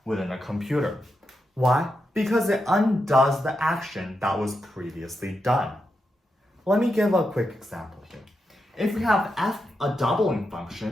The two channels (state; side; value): normal; both; correlation 0.86